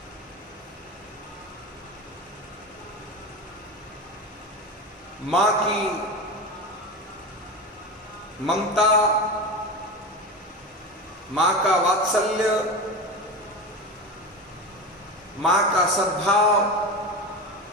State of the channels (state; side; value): normal; both; correlation 0.24